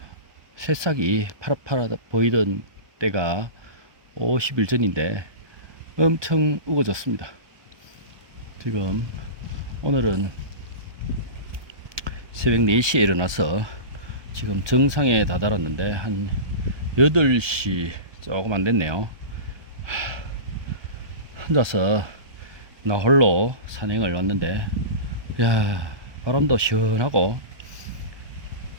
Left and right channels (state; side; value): late; left; 1.2 ms